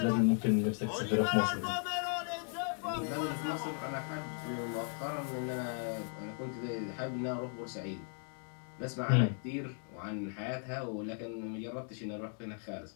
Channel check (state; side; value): silent; right; 53 dB below the other